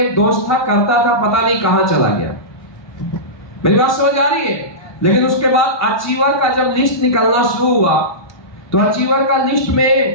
एक दोस्त था, करता था, पता नहीं कहां चला गया। मेरी बात समझ आ रही है? लेकिन उसके बाद अचीवर का जब लिस्ट निकलना शुरू हुआ तो अचीवर का लिस्ट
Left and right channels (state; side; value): late; right; 1.2 ms